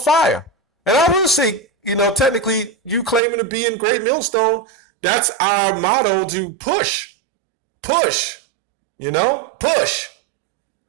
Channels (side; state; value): left; drops out; at 3.2 s